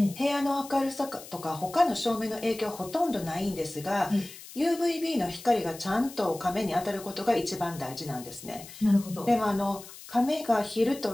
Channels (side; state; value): left; noise; hiss, 16 dB below the sound